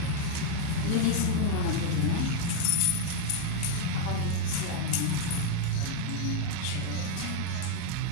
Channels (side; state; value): both; different; correlation 0.00